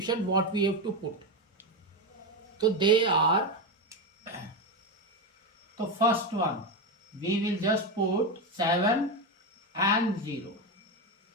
what we have to put. So they are, the first one, we will just put 7 and 0.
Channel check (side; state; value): both; normal; correlation 0.13